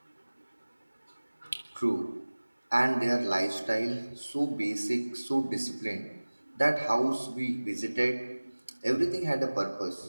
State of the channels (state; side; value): inverted; both; correlation -1.00